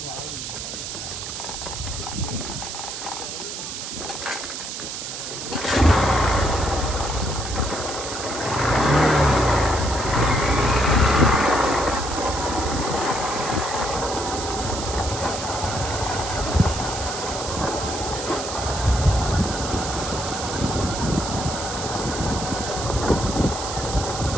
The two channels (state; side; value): noise; right; hiss, 7 dB below the sound